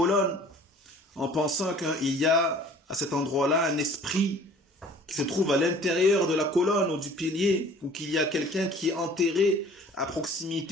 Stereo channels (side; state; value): both; normal; correlation 0.49